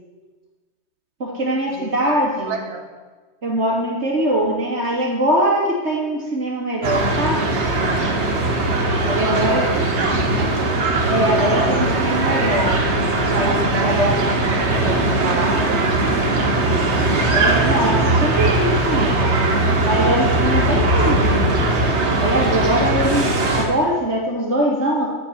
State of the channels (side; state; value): left; late; 3.2 ms